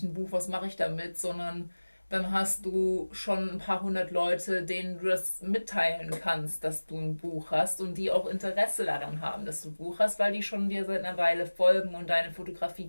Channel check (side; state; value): both; inverted; correlation -1.00